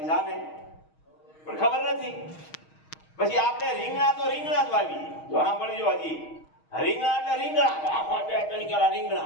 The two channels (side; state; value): right; late; 6.4 ms